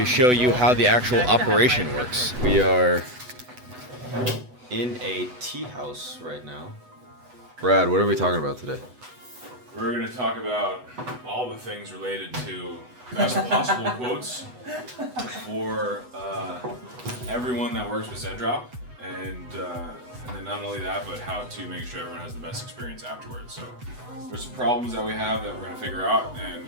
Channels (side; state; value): left; late; 8.0 ms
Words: show you how the actual operation works. We are in a tea house right now. Brad, what are we talking about today? We're gonna talk about all the things related to best possible quotes for everyone that works with Zendrop, and then not only that, but how to make sure everyone has the best experience afterwards. So there's some problems that we have that we're gonna figure out and